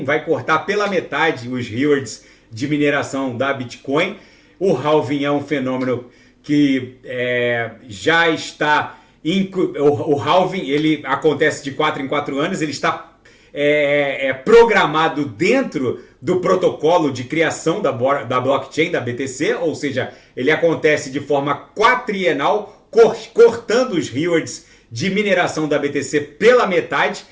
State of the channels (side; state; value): both; identical; correlation 1.00